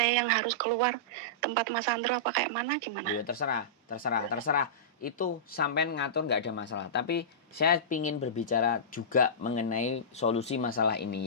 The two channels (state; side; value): normal; both; correlation -0.18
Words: yang harus keluar tempat Mas Andro apa kayak mana gimana? Ya terserah. Itu sampean ngatur nggak ada masalah. Tapi saya ingin berbicara juga mengenai solusi masalah